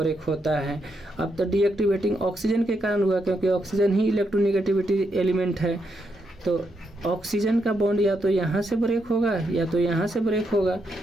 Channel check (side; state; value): both; normal; correlation 0.80